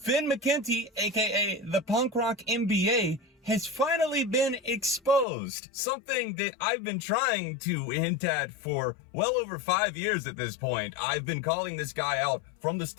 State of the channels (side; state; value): right; drops out; at 5.2 s